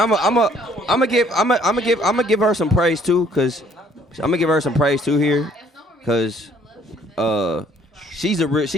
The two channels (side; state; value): both; normal; correlation 0.61